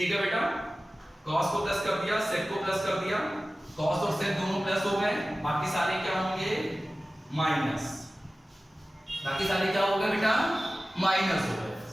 है बेटा। कॉस को प्लस कर दिया, सेक को प्लस कर दिया, कॉस और सेक दोनों प्लस हो गए, बाकी सारे क्या होंगे? माइनस। बाकी सारे क्या हो गए बेटा? माइनस हो गए।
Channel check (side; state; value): both; normal; correlation 0.96